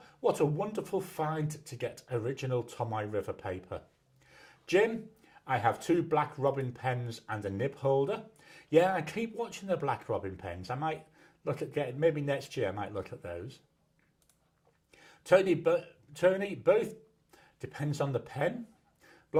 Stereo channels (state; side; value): identical; both; correlation 1.00